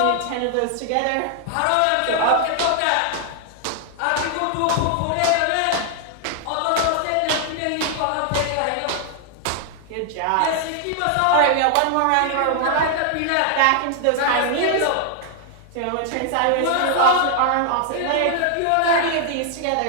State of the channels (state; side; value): different; both; correlation 0.00